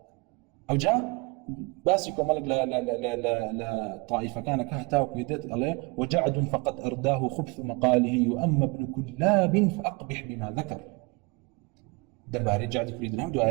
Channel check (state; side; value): quieter; left; 28.7 dB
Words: أو جاء باسكو ملك لا طائفة كان كهتاو كيدت عليه وجعد فقد أرداه خبث مقاله وأما ابن كلاب فأقبح بما ذكر دباري جعد كريد الهم